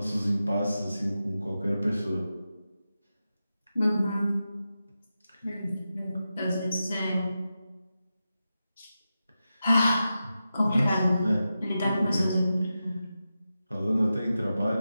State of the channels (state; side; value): inverted; both; correlation -0.91